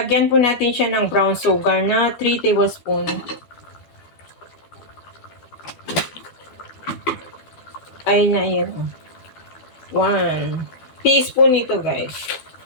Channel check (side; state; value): right; late; 12 ms